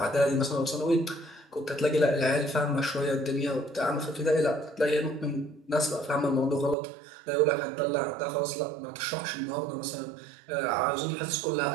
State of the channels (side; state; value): left; drops out; at 6.8 s